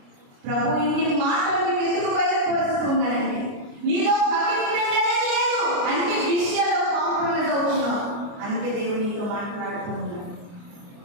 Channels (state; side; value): late; left; 29 ms